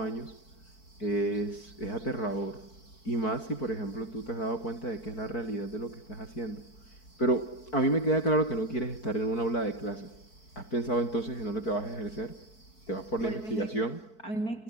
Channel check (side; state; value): right; late; 4.6 ms